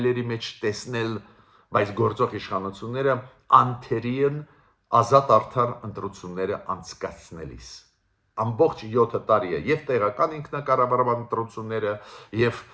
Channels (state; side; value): identical; both; correlation 1.00